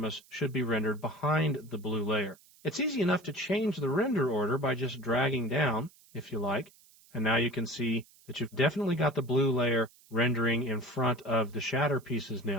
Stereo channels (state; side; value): noise; right; hiss, 27 dB below the sound